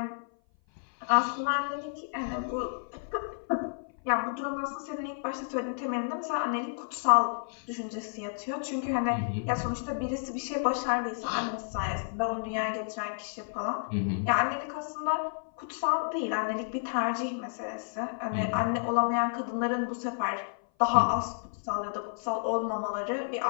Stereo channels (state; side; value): silent; right; 55 dB below the other